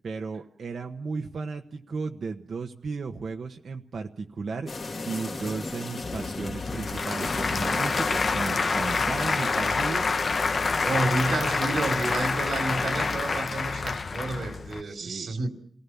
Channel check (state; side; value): normal; both; correlation 0.90